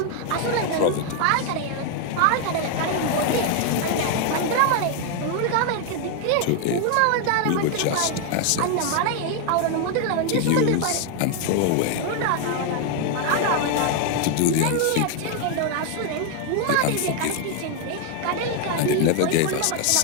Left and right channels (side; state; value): both; different; correlation 0.00